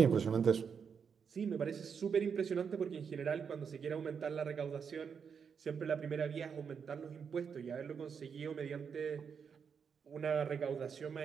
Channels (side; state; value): left; quieter; 6.6 dB